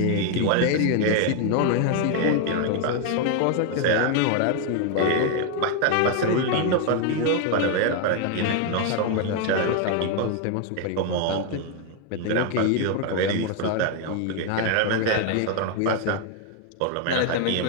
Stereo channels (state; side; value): different; both; correlation 0.01